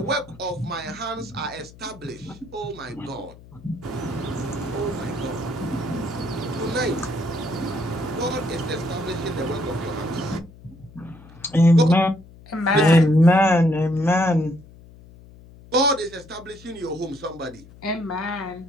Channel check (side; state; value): left; noise; hum, 21 dB below the sound